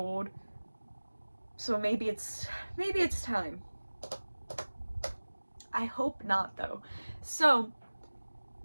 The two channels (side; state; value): both; inverted; correlation -1.00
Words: so maybe it's time. I hope not, though. So